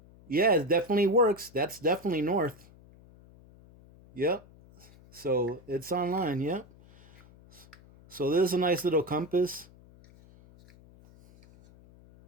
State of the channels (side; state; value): left; noise; hum, 25 dB below the sound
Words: Yeah, it definitely works. That's definitely north. Yep. So it's online, yep. So there's a nice little compass.